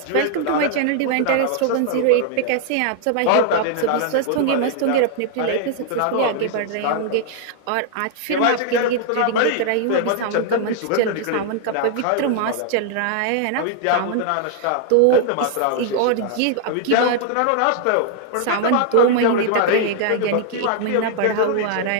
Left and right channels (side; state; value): both; different; correlation 0.00